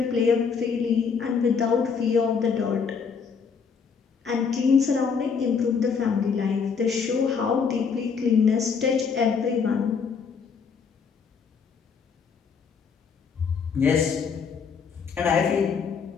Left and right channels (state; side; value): quieter; right; 5.9 dB